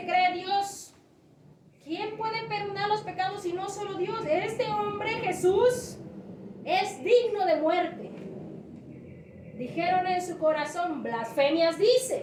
cree Dios. ¿Quién puede perdonar los pecados si no solo Dios? Este hombre, Jesús, es digno de muerte. Dijeron en su corazón, blasfemias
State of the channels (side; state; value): both; identical; correlation 1.00